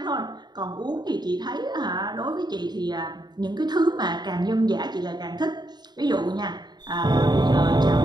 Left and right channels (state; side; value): late; left; 0.20 ms